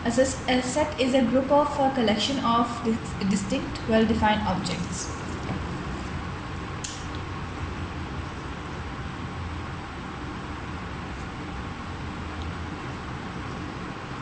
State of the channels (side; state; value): both; identical; correlation 1.00